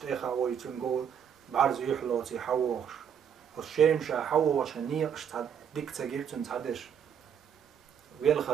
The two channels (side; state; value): left; quieter; 8.1 dB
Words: ويتنقول بعرض يحلوتي حووش والشيم شا حووش نيقش ديك تجيرتن تحدش